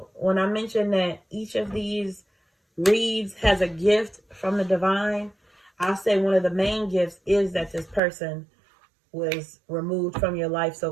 when I mentioned that each of these reads has a gift from the divine, I'll say one of the main gifts is that this person was removed from your life so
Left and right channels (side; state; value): left; drops out; at 8.0 s